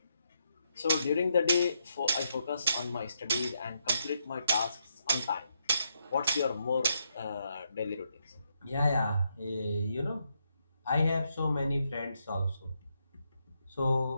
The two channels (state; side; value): inverted; both; correlation -0.79